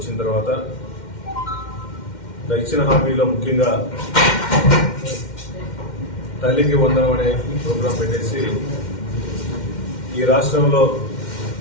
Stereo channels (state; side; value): late; right; 2.1 ms